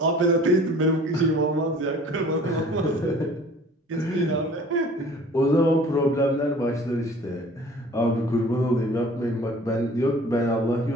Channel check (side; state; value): both; normal; correlation 0.49